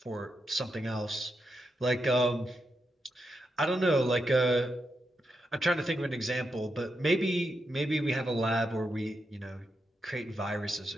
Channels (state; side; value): normal; both; correlation 0.85